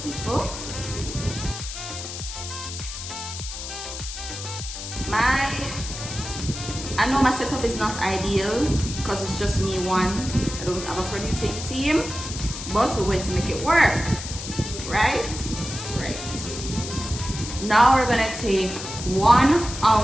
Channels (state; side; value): noise; left; hiss, 8 dB below the sound